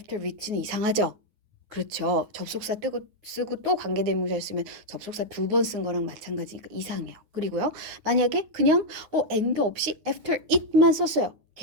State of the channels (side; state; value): left; late; 9.5 ms